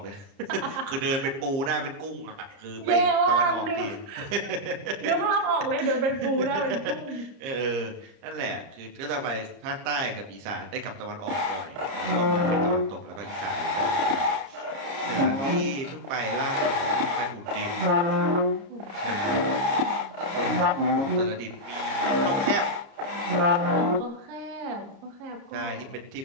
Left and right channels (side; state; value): left; late; 29 ms